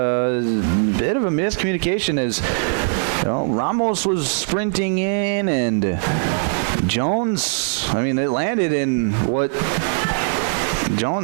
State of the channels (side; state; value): left; silent; digital silence